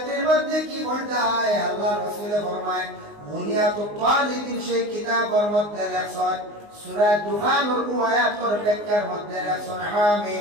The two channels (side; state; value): left; late; 19 ms